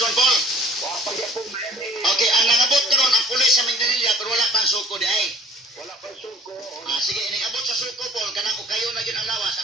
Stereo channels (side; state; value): both; normal; correlation 0.52